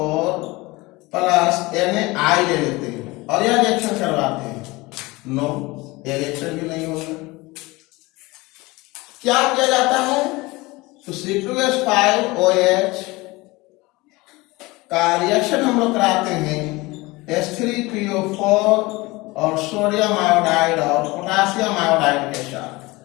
plus NaI ले लेते हैं और यह रिएक्शन करवाते हैं। नो, यह रिएक्शन भी नहीं होगा। क्या किया जाता है? तो C2H5OH का रिएक्शन हम लोग कराते हैं H3PO4 और सोडियम आयोडाइड और पोटासियम आयोडाइड के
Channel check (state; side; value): quieter; right; 22.3 dB